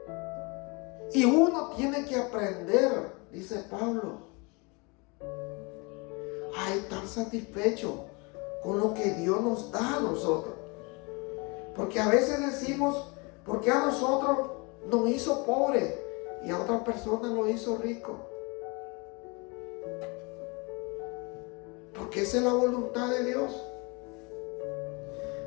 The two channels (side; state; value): right; quieter; 29.1 dB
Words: Y uno tiene que aprender, dice Pablo, a estar satisfecho con lo que Dios nos da a nosotros. Porque a veces decimos, ¿por qué a nosotros nos hizo pobre y a otras personas nos hizo rico? Porque esa es la voluntad de Dios.